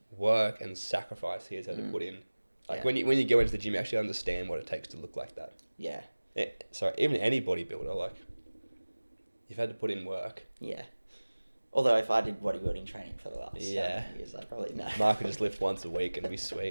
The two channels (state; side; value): inverted; both; correlation -1.00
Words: work and sacrifice he has had to put in. Like Yeah. when you go into the gym, you actually understand what it takes to look like that. Yeah. So even any bodybuilder, like, you've had to put in work. Yeah. Although if I did bodybuilding training for the last Yeah. 7 years, I'd probably know. Mark could just lift once a week and be